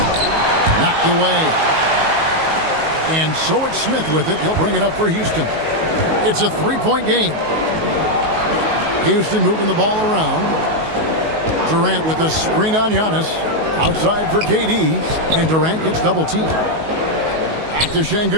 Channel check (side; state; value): left; late; 19 ms